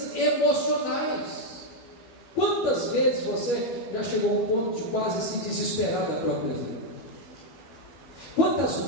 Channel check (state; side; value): late; right; 13 ms